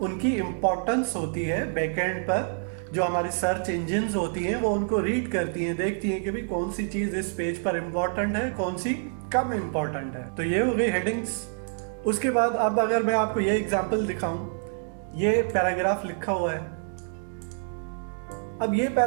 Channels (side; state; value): left; silent; digital silence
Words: उनकी इम्पोर्टेंस होती है बैकएंड पर। जो हमारी सर्च इंजिन्स होती हैं वो उनको रीड करती हैं, देखती हैं कि भाई कौन सी चीज इस पेज पर इम्पोर्टेंट है, कौन सी कम इम्पोर्टेंट है। तो ये हो गई हेडिंग्स। उसके बाद अब अगर मैं आपको ये एग्जाम्पल दिखाऊं, ये पैराग्राफ लिखा हुआ है। अब ये